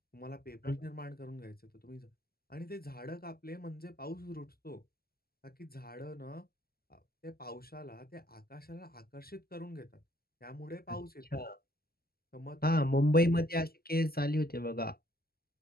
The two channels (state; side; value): late; right; 0.45 ms